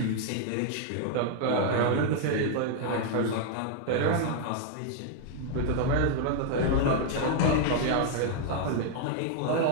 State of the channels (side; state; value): both; different; correlation 0.00